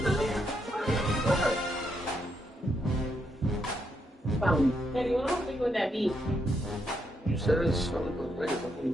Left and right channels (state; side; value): normal; both; correlation 0.79